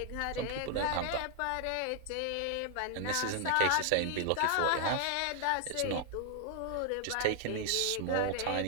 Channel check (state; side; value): different; both; correlation 0.00